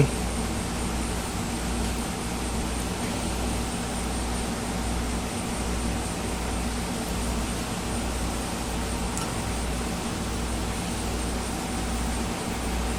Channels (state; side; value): identical; both; correlation 1.00